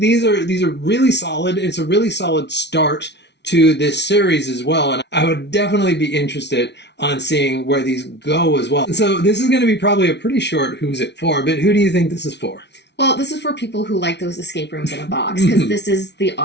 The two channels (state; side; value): late; right; 0.50 ms